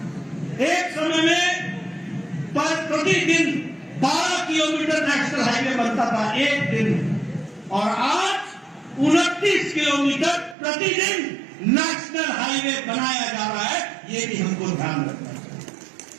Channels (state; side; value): drops out; left; at 10.6 s